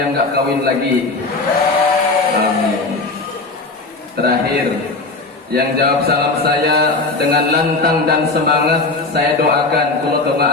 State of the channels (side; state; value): right; quieter; 3.5 dB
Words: nggak kawin lagi. Amin. Terakhir, yang jawab salam saya dengan lantang dan semangat, saya doakan, kalau